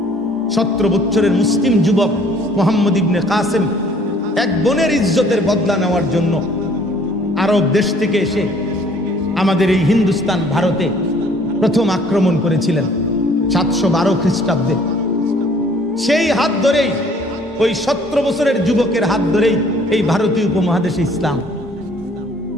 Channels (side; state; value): both; normal; correlation 0.57